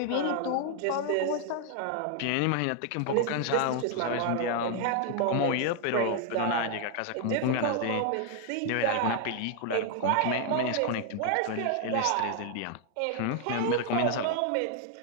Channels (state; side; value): different; both; correlation 0.00